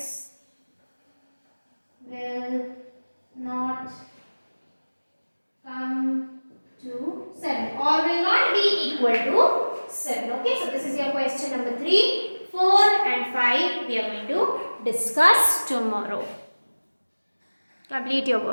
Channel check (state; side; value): inverted; both; correlation -1.00